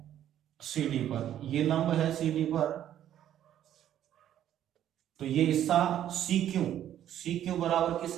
सीडी पर, ये लंब है सीडी पर, तो ये हिस्सा सी क्यू बराबर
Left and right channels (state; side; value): quieter; left; 11.2 dB